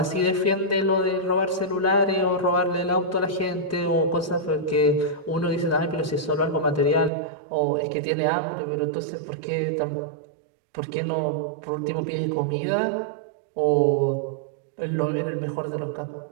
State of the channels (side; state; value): left; drops out; at 7.1 s